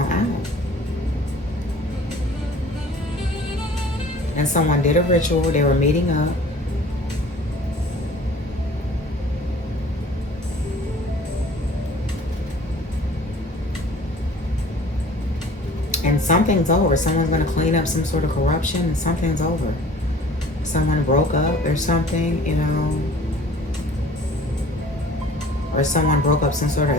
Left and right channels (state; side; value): normal; both; correlation 0.49